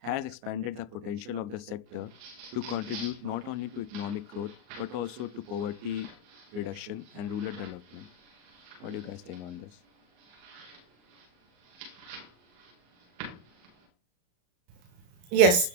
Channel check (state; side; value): late; left; 34 ms